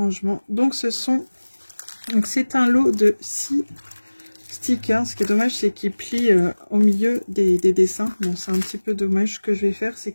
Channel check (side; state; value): both; inverted; correlation -1.00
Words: Donc, c'est un lot de 6 stickers. Ce qui est dommage, c'est qu'ils plient au milieu des dessins. Bon, c'est un petit peu dommage. Ce que je vais faire, c'est